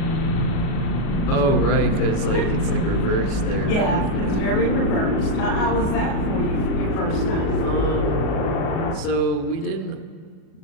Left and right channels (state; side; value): late; right; 37 ms